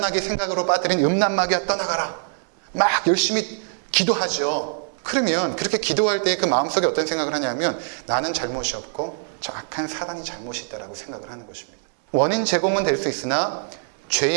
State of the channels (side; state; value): left; silent; 63 dB below the other